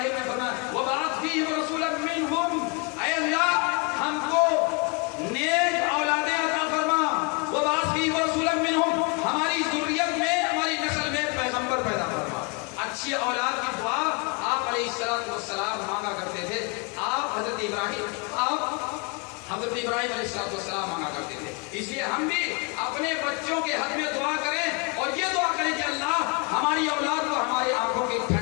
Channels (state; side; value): quieter; right; 31.4 dB